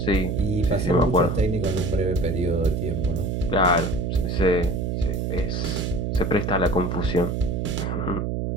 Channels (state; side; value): noise; right; hum, 1 dB below the sound